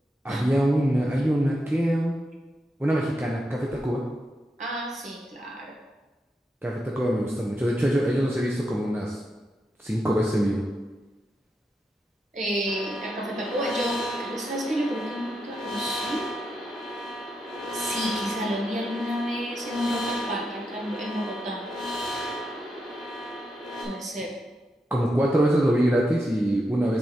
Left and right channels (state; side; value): normal; both; correlation 0.85